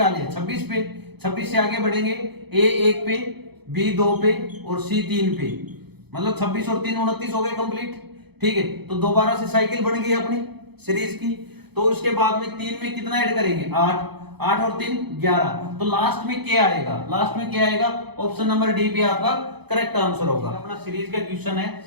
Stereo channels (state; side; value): late; left; 0.98 ms